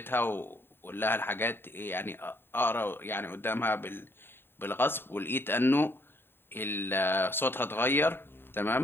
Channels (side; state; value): right; late; 0.11 ms